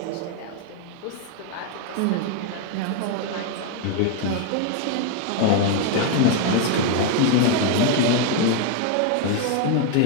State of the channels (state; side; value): different; both; correlation 0.01